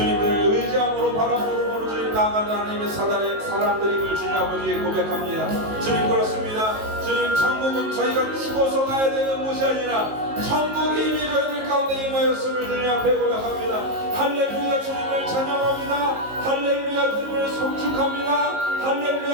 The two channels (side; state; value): left; late; 19 ms